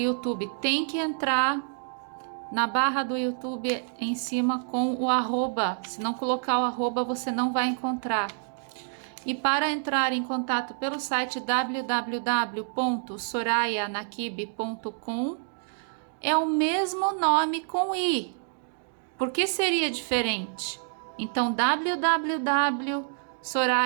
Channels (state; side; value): silent; left; digital silence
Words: Tem que entrar na barra do YouTube em cima com o arroba. Se não colocar o arroba, você não vai encontrar. E para entrar em contato pelo site www.sorayanakibe.com, é o mesmo nome com I. Por que seria diferente? Então,